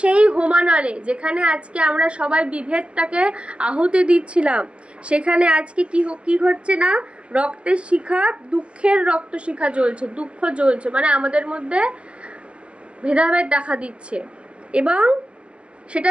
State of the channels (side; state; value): left; late; 0.055 ms